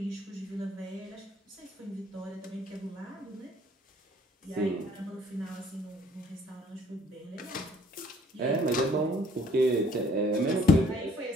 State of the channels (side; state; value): both; normal; correlation 0.60